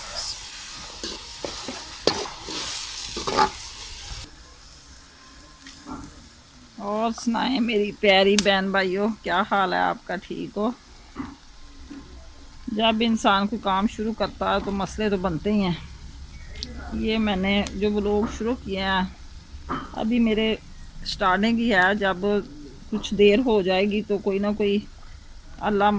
और सुनाएं मेरी प्यारी बहन भाइयों, क्या हाल है आपका? ठीक हो? जब इंसान को काम शुरू करता है तो मसले तो बनते ही हैं। ये मैंने जो व्लॉग शुरू किए हैं अभी मेरे स्टार्टिंग ही है। जब कुछ देर हो जाएगी तो कोई ना कोई अल्लाह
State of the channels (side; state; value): both; identical; correlation 1.00